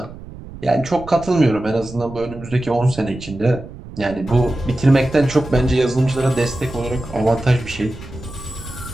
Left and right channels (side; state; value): right; noise; rumble, 15 dB below the sound